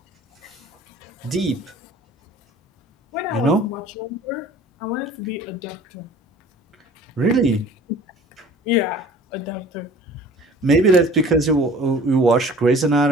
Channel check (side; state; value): both; normal; correlation 0.47